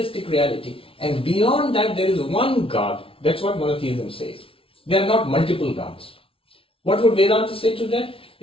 reality. And beyond that, there is one God. That's what monotheism says. There are not multiple gods. What would Vedanta say to that?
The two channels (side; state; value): right; late; 0.26 ms